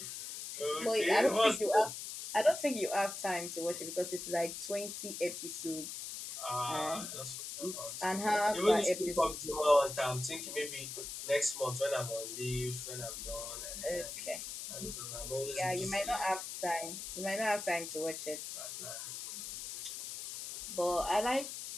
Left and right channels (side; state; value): left; noise; hiss, 7 dB below the sound